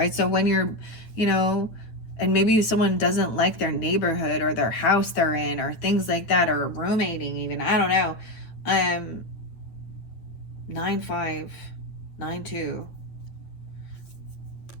So when you're, you know, and maybe someone doesn't like their neighborhood or their house they're in or things like that, or roommating even, I don't know. 9-5, 9-2.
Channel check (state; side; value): late; right; 8.9 ms